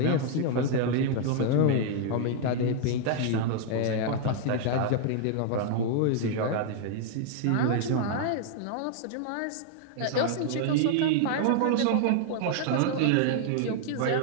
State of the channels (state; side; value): different; both; correlation 0.00